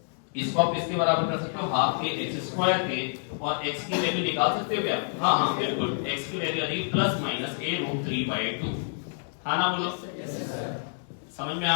इसको आप इसके बराबर कर सकते हो हाफ के x स्क्वायर के, और x की वैल्यू निकाल सकते हो क्या? हाँ बिल्कुल, x की वैल्यू आ रही प्लस माइनस a√3/2। हाँ ना बोलो? समझ में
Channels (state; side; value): silent; right; digital silence